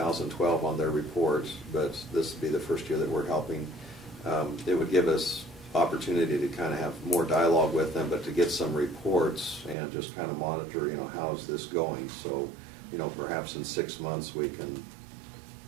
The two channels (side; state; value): left; drops out; at 9.8 s